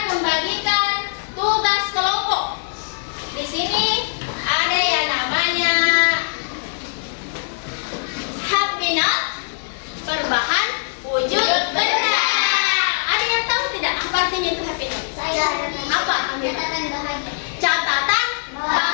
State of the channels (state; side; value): silent; right; digital silence